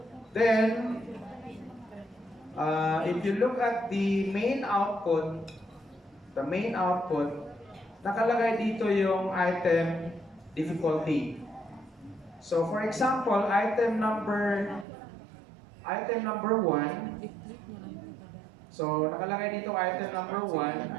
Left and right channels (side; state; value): left; drops out; at 14.9 s